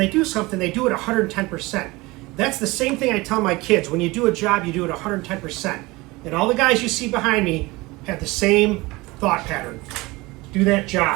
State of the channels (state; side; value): quieter; left; 22.1 dB